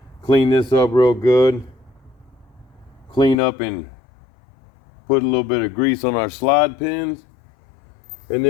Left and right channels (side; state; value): right; drops out; at 3.4 s